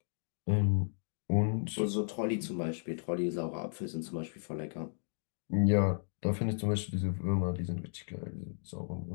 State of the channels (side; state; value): right; silent; digital silence